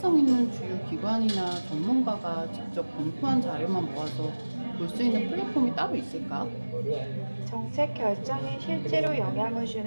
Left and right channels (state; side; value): inverted; both; correlation -1.00